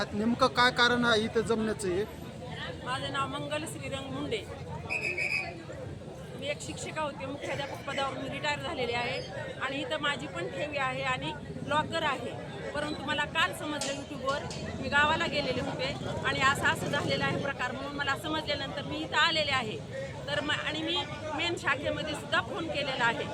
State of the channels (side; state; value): both; identical; correlation 1.00